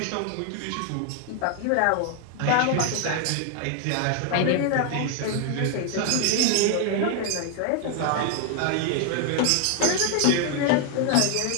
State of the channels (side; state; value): both; different; correlation 0.00